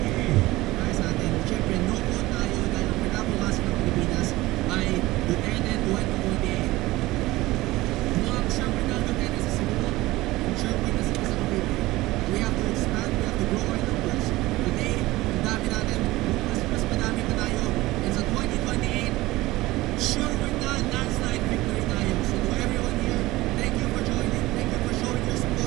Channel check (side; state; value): left; quieter; 18.7 dB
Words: Ay sa atin, syempre, no po tayo dahil ang pinabukasan ng Pilipinas ay Duterte 2048. Mga syempre na Duterte sa Cebu, syempre kasi sa Cavite. We have to expand, we have to grow our numbers. Today, ang dami natin, mas madami pa tayo. And sa 2028, sure we're not landslide victory tayo. So to everyone here, thank you for joining, thank you for showing your